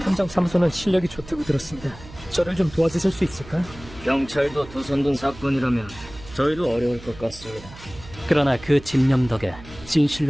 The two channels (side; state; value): right; noise; hum, 18 dB below the sound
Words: 실력이 좋다고 들었습니다. 저를 좀 도와주실 수 있을까요? 경찰도 두 손 든 사건이라면 저희도 어려울 것 같습니다. 그러나 그 집념 덕에